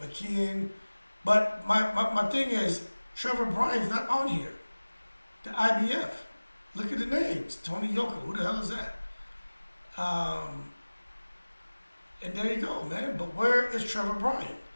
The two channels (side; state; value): both; inverted; correlation -1.00